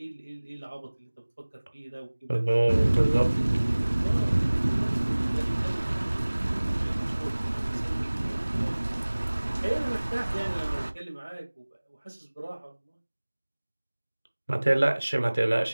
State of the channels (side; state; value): both; inverted; correlation -1.00